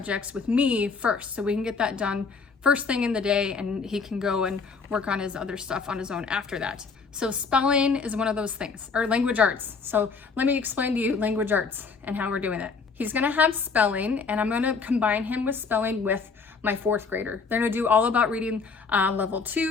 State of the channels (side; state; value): right; quieter; 4.9 dB